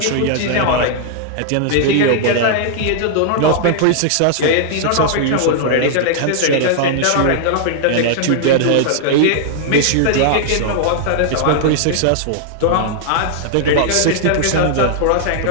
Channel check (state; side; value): different; both; correlation -0.01